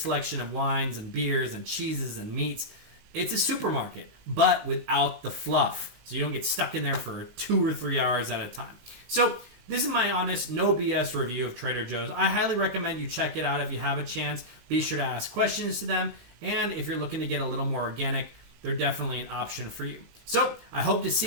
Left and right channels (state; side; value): late; left; 19 ms